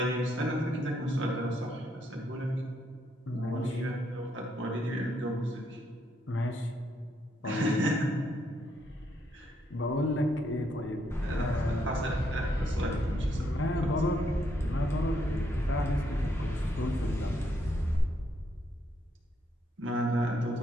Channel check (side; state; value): both; normal; correlation 0.75